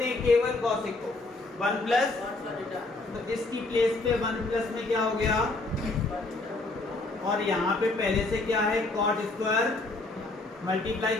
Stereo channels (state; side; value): quieter; right; 3.1 dB